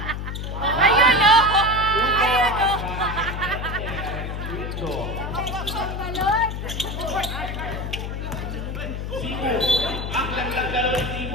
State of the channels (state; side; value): noise; left; hum, 5 dB below the sound